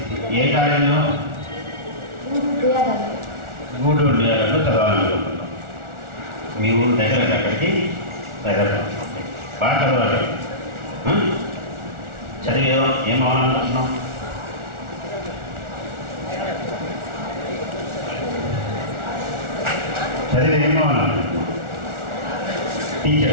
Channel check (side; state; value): left; late; 1.4 ms